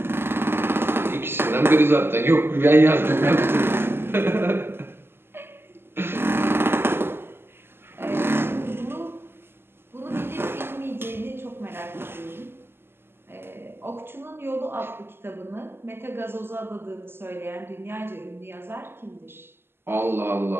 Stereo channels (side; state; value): left; late; 0.11 ms